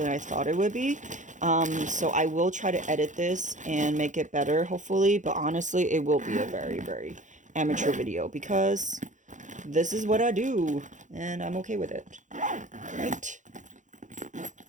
I thought it would be. So I will try to edit this and make it better, hopefully. But honestly, it will be a very, very amateur video because this is what I do and I'm okay with it. Right?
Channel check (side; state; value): left; late; 0.36 ms